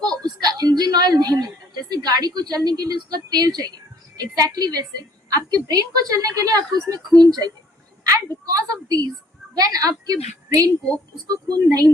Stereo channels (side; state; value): both; normal; correlation 0.60